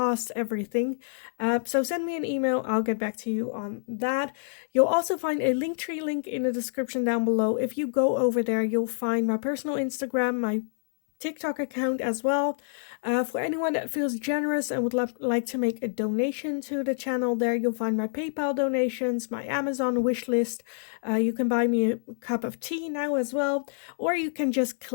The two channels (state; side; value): silent; right; 60 dB below the other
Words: everything. So send me an email. I'll get back to you on that. You'll also find a Linktree link in the description down below. If you go over there, you'll find my personal Instagram, my TikTok account as well. For anyone that feels generous and would like to make a donation to the channel, there you'll find my PayPal donations, my Amazon wish list. You can buy me a cup of tea now as well, or you can just